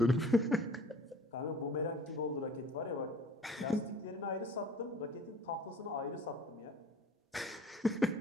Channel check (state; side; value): normal; both; correlation 0.49